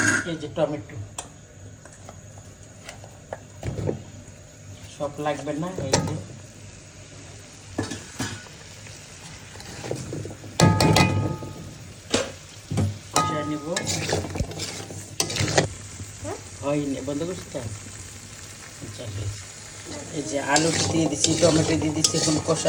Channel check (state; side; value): identical; both; correlation 1.00